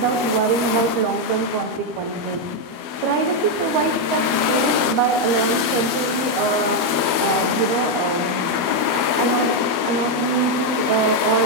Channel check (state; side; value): late; left; 12 ms